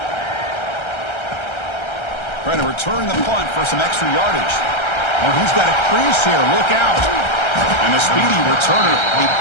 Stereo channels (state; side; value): late; right; 1.3 ms